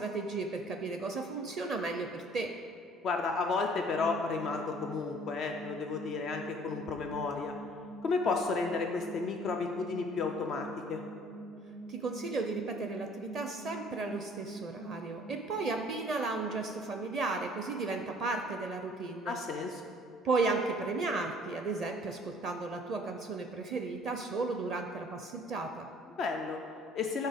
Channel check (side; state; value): both; normal; correlation 0.54